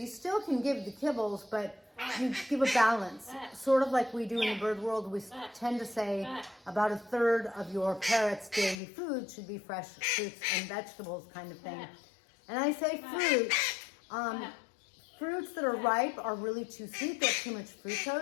still can give the kibbles, but you give a balance. Sort of like we do in the bird world, we tend to say about a third of your parrot's daily food should be fresh fruits and vegetables kind of thing. And I say fruit. Fruits that are ripe are really too sweet. They're too much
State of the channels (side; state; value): right; drops out; at 8.8 s